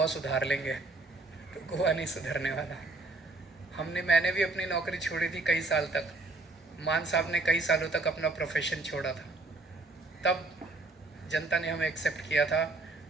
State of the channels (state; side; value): quieter; left; 3.3 dB